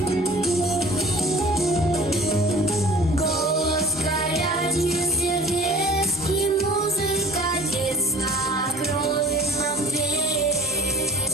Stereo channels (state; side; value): normal; both; correlation 0.47